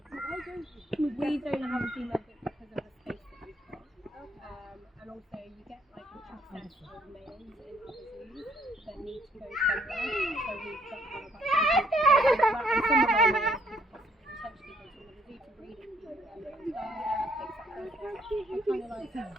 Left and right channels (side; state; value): both; normal; correlation 0.68